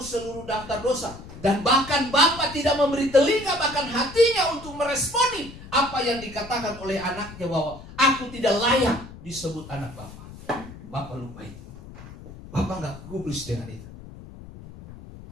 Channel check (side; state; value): left; noise; rumble, 16 dB below the sound